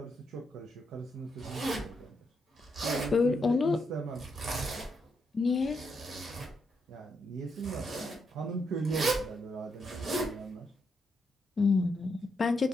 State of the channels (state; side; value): normal; both; correlation 0.80